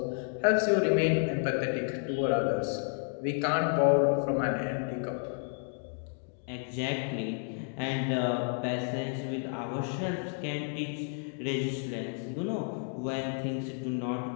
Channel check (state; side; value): silent; right; 57 dB below the other